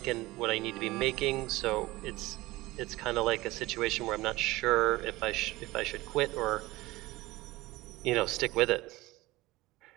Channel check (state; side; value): quieter; left; 19.6 dB